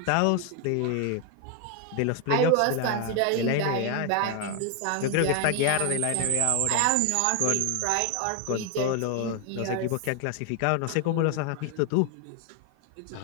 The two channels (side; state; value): both; different; correlation 0.01